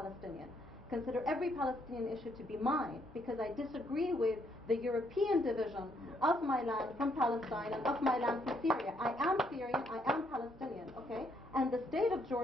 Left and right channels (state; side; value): normal; both; correlation 0.72